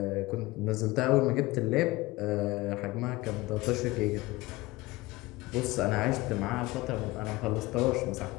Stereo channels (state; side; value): quieter; right; 20.3 dB